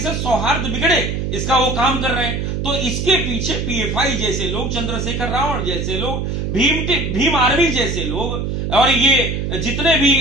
सौहार्द बिगड़े, इसका वो काम कर रहे हैं। तो इसके पीछे पीएफआई जैसे लोग, चंद्रशेखर रावण जैसे लोग, भीम आर्मी जैसे लोग, और ये जितने भी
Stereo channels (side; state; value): right; noise; hum, 2 dB below the sound